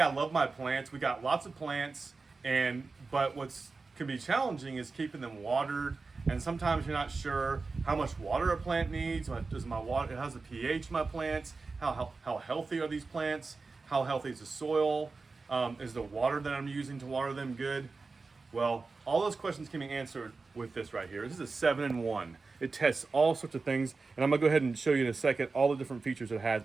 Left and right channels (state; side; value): quieter; left; 4.1 dB